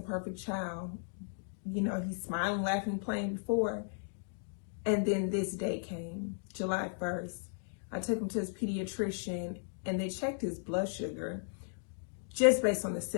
perfect child. You know, he's smiling, laughing, playing before. And then this day came, July 1st. I took him to his pediatrician and they checked his blood sugar just based on the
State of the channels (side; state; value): right; silent; digital silence